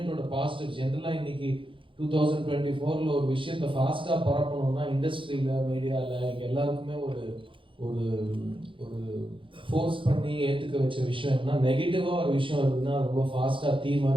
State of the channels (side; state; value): left; late; 0.25 ms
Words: பாசிட்டிவ் ஜென்ரலாக இன்னைக்கு 2024 ஒரு விஷயத்தை ஃபாஸ்ட்டாக பரப்பணும்னா இண்டஸ்ட்ரியில், மீடியாவில் இங்கே எல்லாருக்குமே ஒரு ஒரு ஒரு ஃபோர்ஸ் பண்ணி ஏற்றுக்க வச்ச விஷயம் என்ன, நெகட்டிவாக ஒரு விஷயம் இருக்குதுன்னா ரொம்ப ஃபாஸ்ட்டாக தீ